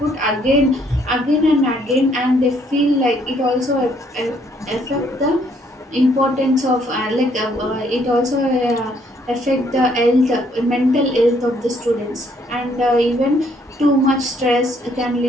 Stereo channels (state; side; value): normal; both; correlation 0.67